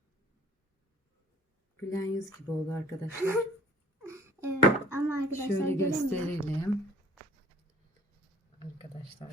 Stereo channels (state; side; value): normal; both; correlation 0.52